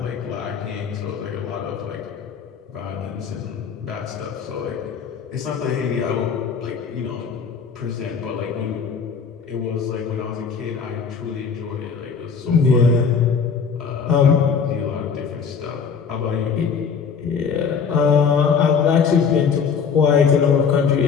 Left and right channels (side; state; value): right; quieter; 6.2 dB